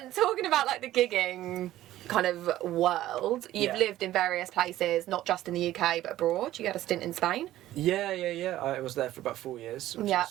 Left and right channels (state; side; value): quieter; left; 14.3 dB